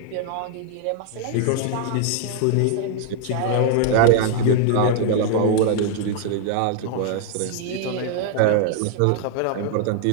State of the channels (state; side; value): different; both; correlation 0.00